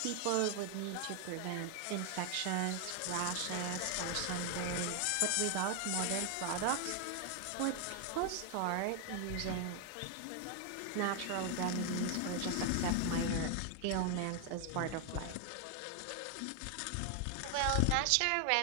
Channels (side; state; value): both; different; correlation 0.00